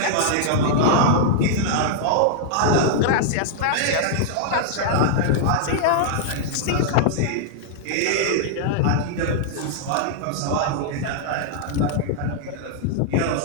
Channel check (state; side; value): different; both; correlation -0.01